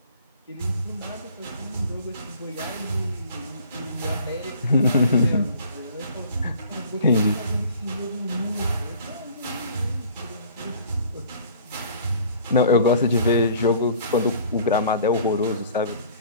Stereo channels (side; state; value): both; inverted; correlation -0.50